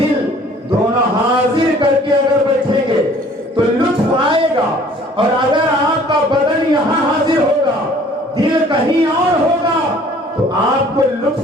دونوں حاضر کر کے اگر بیٹھیں گے تو لطف آئے گا, اور اگر آپ کا بدن یہاں حاضر ہوگا دل کہیں اور ہوگا تو آپ کو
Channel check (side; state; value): both; normal; correlation 0.54